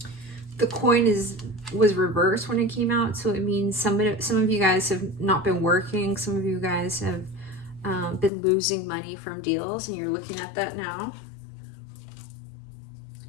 The coin was reversed when it came out, so it means some of you guys have not been working. Some of you guys have been losing money from deals, and you're looking at that now.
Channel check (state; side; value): drops out; right; at 8.3 s